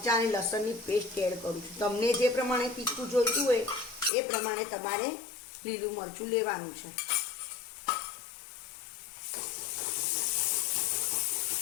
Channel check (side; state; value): right; drops out; at 4.1 s